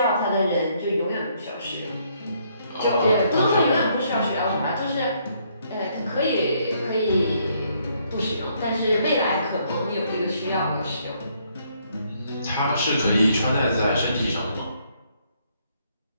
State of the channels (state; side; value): inverted; both; correlation -0.69